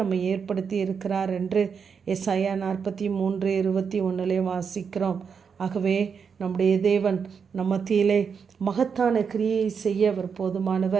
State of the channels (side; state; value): left; quieter; 6.3 dB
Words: ஏற்படுத்தி இருக்கிறார் என்று ஏசாயா 43:21 வாசிக்கிறோம். ஆகவே நம்முடைய தேவன் நம் மத்தியிலே மகத்தான கிரியை செய்ய அவர்